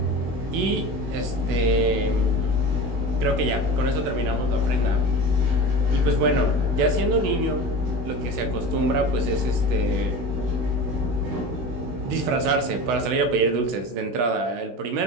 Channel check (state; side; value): late; left; 16 ms